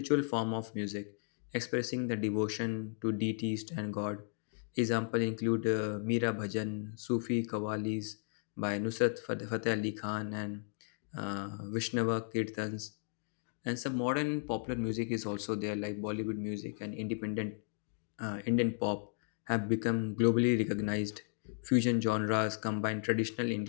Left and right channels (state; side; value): silent; right; 54 dB below the other